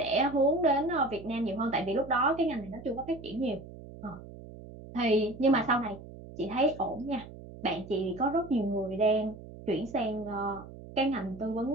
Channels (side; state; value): right; noise; hum, 15 dB below the sound